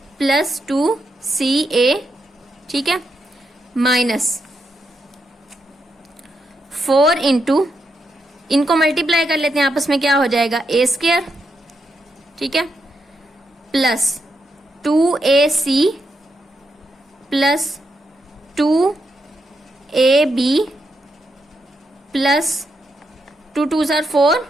plus 2ca। ठीक है, माइनस 4 इंटू, इनको मल्टीप्लाई कर लेते हैं आपस में, क्या हो जाएगा a², ठीक है, plus 2ac plus 2ab plus 2 2s are 4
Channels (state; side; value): normal; both; correlation 0.83